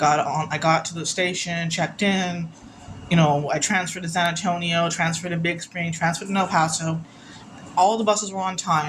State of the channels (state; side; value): identical; both; correlation 1.00